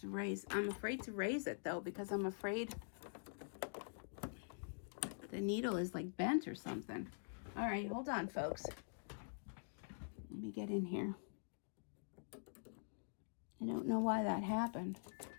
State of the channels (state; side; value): silent; right; digital silence